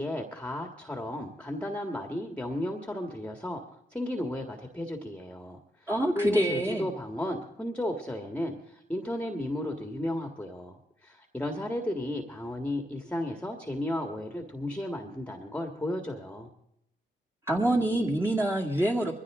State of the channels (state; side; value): normal; both; correlation 0.84